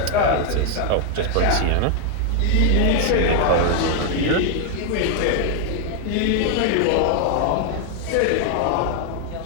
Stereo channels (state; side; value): different; both; correlation 0.00